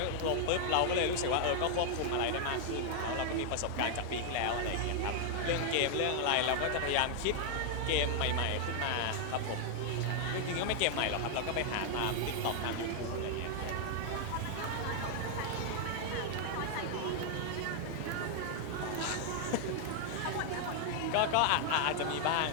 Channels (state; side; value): different; both; correlation 0.00